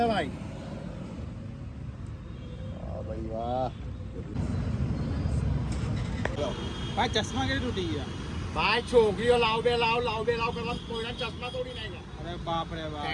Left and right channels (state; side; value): identical; both; correlation 1.00